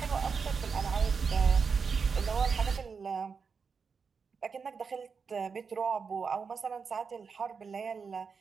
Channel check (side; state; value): left; quieter; 5.5 dB